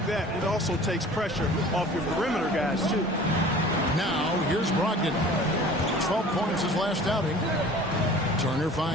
that, it also takes pressure off your perimeter guys, too. Now, here's Brogdon. 12 points his last outing. Turner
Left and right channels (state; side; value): normal; both; correlation 0.45